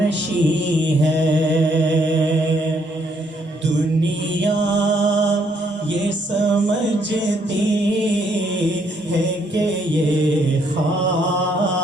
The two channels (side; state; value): both; normal; correlation 0.71